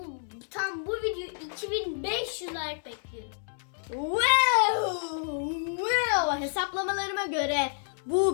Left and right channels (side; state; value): right; silent; digital silence